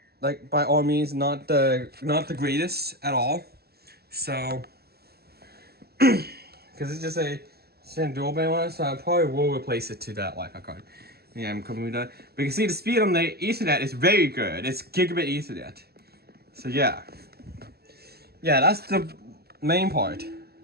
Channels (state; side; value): late; left; 0.46 ms